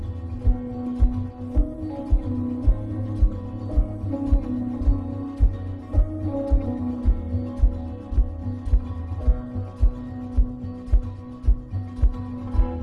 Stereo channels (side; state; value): both; identical; correlation 1.00